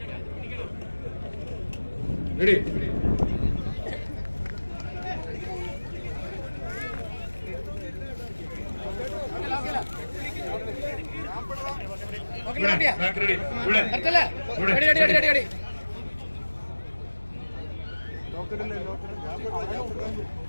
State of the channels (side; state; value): both; inverted; correlation -1.00